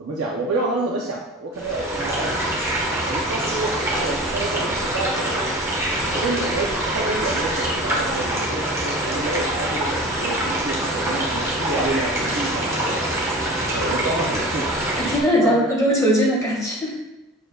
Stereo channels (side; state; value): both; normal; correlation 0.36